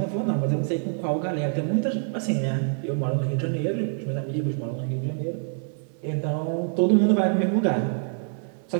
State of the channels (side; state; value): left; silent; 61 dB below the other